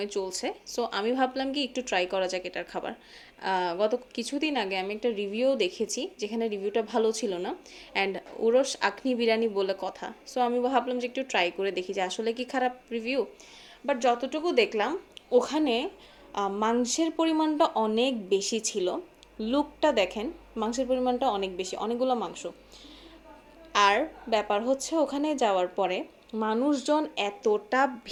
চলছে, সো আমি ভাবলাম কি একটু ট্রাই করা যাক এটার খাবার। গত কিছুদিন আগে আমি একটা রিভিউ দেখেছি, যেখানে রিভিউটা ভালো ছিল না, অ্যান্ড উরস আখনি বিরিয়ানি বলে কথা। সো আমি ভাবলাম যে একটু ট্রাই করে দেখি যে আসলে কি খারাপ রিভিউ। বাট যতটুকু দেখলাম ওখানে মাংসের পরিমাণটা অনেক বেশি ছিল। লুকটা দেখেন, মাংসের পরিমাণটা অনেক বেশি, অনেকগুলো মাংস। আর ব্যাপার হচ্ছে ওখানে যাওয়ার পরে মানুষজন এতটা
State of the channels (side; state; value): both; identical; correlation 1.00